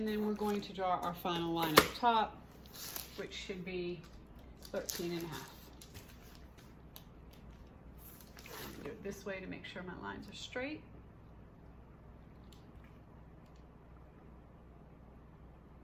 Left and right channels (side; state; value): both; identical; correlation 1.00